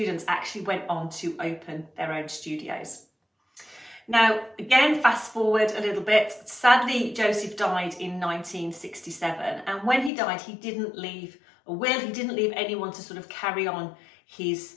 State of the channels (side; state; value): right; drops out; at 10.1 s